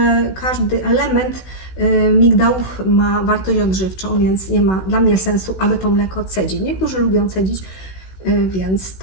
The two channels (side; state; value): right; late; 16 ms